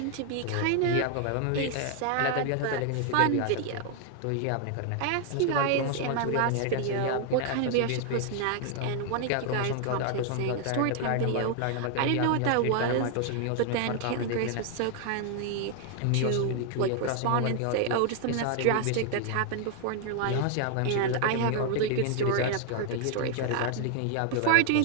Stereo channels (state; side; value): different; both; correlation 0.00